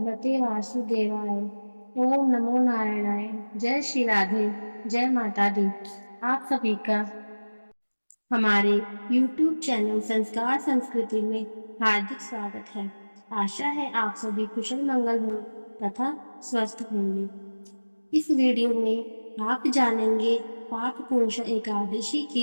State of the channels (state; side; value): inverted; both; correlation -1.00